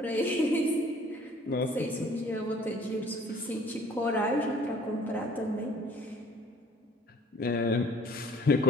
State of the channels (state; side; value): normal; both; correlation 0.53